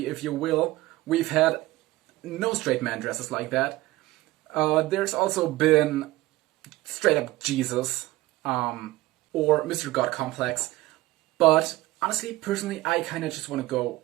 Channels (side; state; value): left; quieter; 18.2 dB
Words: if you will. We've had no straight man dresses like that. There's also been straight up Jesus, or Mr. God Complex. But honestly, personally, I kind of just want to go